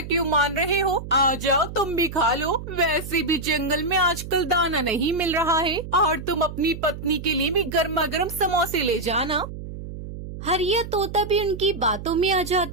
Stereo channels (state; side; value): noise; right; hum, 10 dB below the sound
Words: मान रहे हो? आ जाओ, तुम भी खा लो। वैसे भी जंगल में आजकल दाना नहीं मिल रहा है और तुम अपनी पत्नी के लिए भी गर्मा गर्म समोसे ले जाना। हरिया तोता भी उनकी बातों में आ